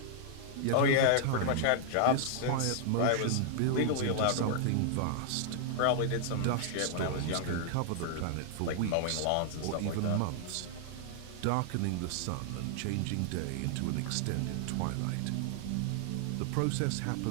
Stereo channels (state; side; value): different; both; correlation -0.01